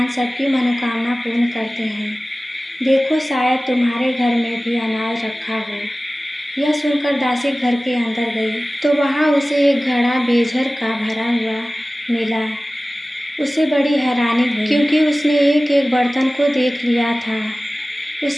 सबकी मनोकामना पूर्ण करते हैं। देखो, शायद तुम्हारे घर में भी अनाज रखा हो। यह सुनकर दासी घर के अंदर गई तो वहाँ उसे एक घड़ा बेजर का भरा हुआ मिला। उसे बड़ी हैरानी हुई, क्योंकि उसने एक एक बर्तन को देख लिया था।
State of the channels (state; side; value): normal; both; correlation 0.97